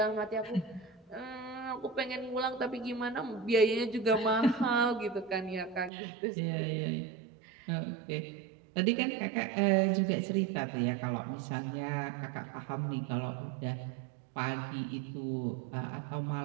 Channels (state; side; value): drops out; left; at 5.9 s